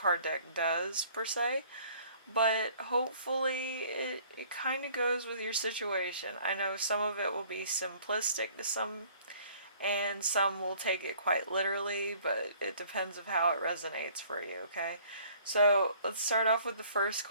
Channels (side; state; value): both; inverted; correlation -0.55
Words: deck does per se, but hopefully it kind of goes with your situation. I know some of it will be simplistic to some, and some will take it quite literally, but it depends of how it resonates for you, okay? So let's start off with the first